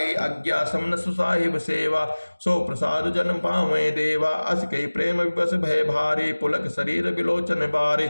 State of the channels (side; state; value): both; inverted; correlation -1.00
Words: अज्ञा समन सुसाहिब सेवा सो प्रसाद जन पावे देवा अस कई प्रेम विवश भय भारी पुलक शरीर विलोचन बारे